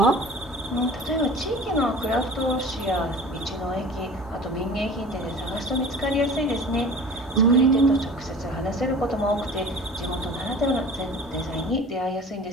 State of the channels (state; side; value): normal; both; correlation 0.41